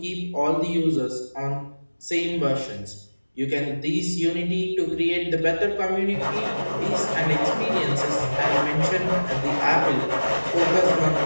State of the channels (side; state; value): both; inverted; correlation -1.00